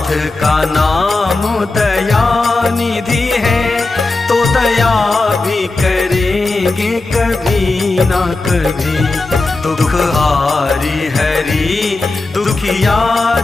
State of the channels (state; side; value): quieter; right; 3.3 dB